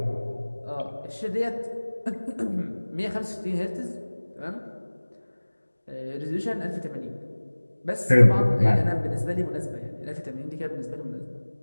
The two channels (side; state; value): both; inverted; correlation -1.00